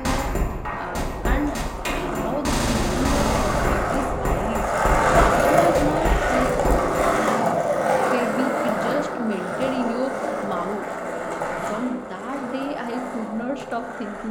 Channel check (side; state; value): both; identical; correlation 1.00